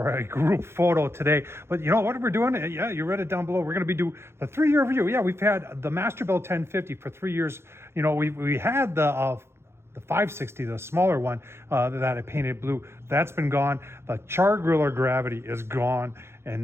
a group photo today. But you know what we're doing? Yeah, you read it down below. We're going to be doing the 3-year review. Yeah, we've had the Masterbuilt 1050 for 3 years. You know, we had the 560, the smaller one that I painted blue. That's been gone. The char griller gravity is gone, and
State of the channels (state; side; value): late; left; 0.12 ms